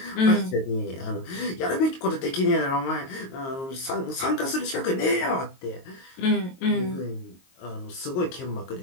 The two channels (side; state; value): right; late; 22 ms